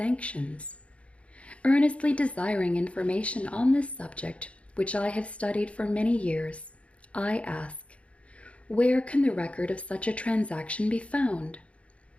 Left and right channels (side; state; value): right; late; 0.062 ms